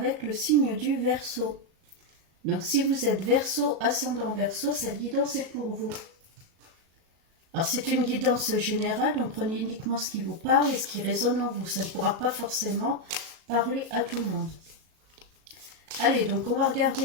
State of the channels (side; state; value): left; late; 37 ms